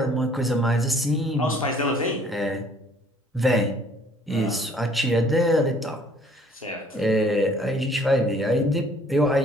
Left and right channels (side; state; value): both; normal; correlation 0.58